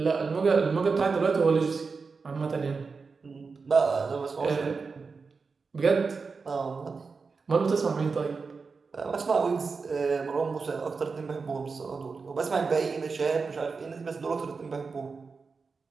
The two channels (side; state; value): left; quieter; 4.7 dB